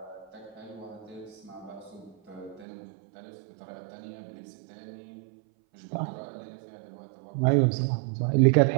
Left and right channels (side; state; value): left; drops out; at 2.7 s